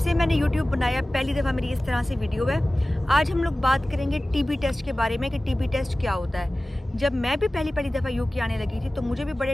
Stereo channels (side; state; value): both; normal; correlation 0.97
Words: मैंने यूट्यूब बनाया पहली दफ़ा मेरी इस तरह से वीडियो है। आज हम लोग बात करेंगे टीबी टेस्ट के बारे में कि टीबी टेस्ट क्या होता है। जब मैं भी पहली दफ़ा यूके आने लगी थी तो मुझे भी बड़े